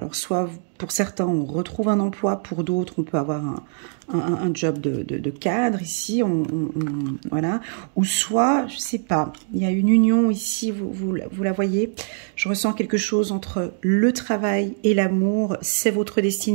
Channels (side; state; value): left; silent; digital silence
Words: soit pour certains, on retrouve un emploi, pour d'autres, on peut avoir un job de cadre ici, voilà. Ou soit, je ne sais pas, il y a une union ici, vous la voyez. Je ressens quelque chose entre le travail et l'amour, c'est votre